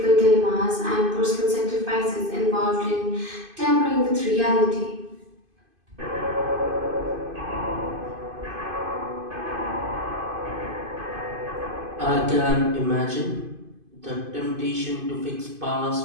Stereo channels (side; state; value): left; late; 2.5 ms